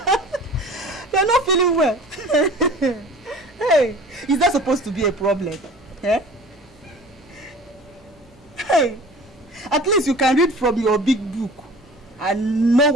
You're not feeling well. Hey, is that supposed to be a problem? Eh? Hey, at least you can read from your big book and know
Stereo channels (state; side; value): normal; both; correlation 0.44